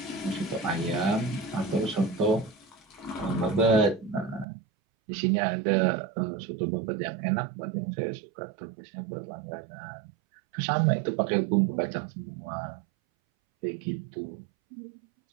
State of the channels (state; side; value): drops out; left; at 4.5 s